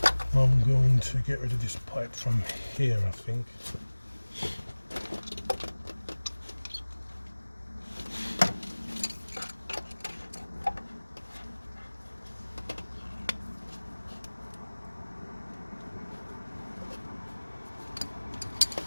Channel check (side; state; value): both; inverted; correlation -1.00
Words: I'm going to get rid of this pipe from here, I think.